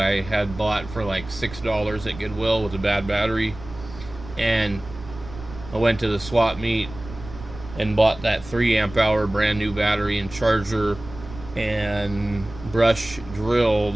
had bought for like $6 at Goodwill with a bad battery. And I went to the swap meet and bought that 3 amp hour brand new battery and charger and brush drill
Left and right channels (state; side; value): noise; right; rumble, 15 dB below the sound